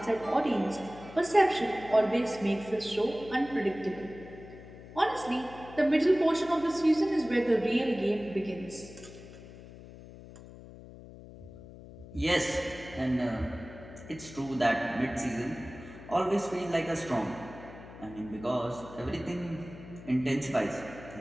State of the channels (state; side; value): noise; left; hum, 16 dB below the sound